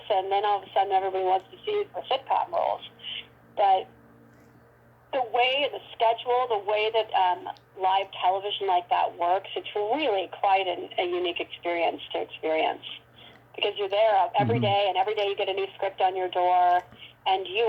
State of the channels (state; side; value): identical; both; correlation 1.00